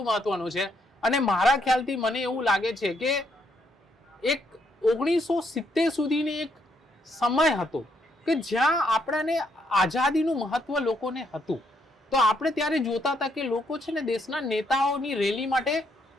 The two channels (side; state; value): both; normal; correlation 0.74